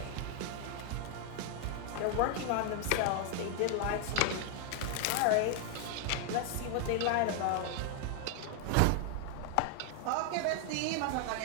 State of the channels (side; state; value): both; different; correlation 0.00